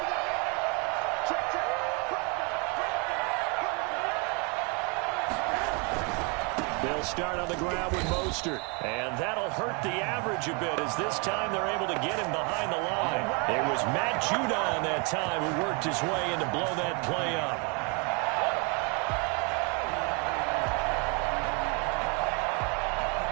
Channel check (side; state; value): left; quieter; 32.0 dB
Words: They'll start on the ground with Mostert. And that'll hurt the average a bit as this time they're able to get him behind the line. It was Matt Judon that time who worked his way in to blow that play up.